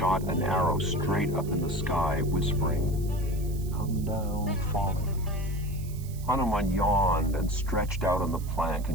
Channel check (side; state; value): right; noise; hiss, 19 dB below the sound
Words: an arrow straight up in the sky, whispering, "Come down, falling." Hanuman yawned and stretched out on the plank